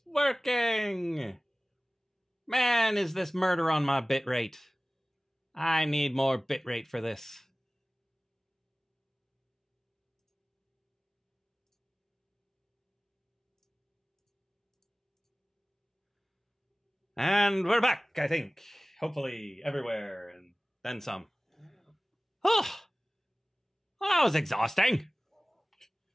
working! Man, is this murder on my bitrate. I need more bitrate for this. And we're back, I think. Hopefully everywhere, and then some. Oh, that was exhausting.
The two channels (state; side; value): normal; both; correlation 0.98